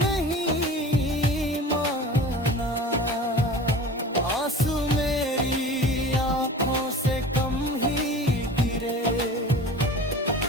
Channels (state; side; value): normal; both; correlation 0.38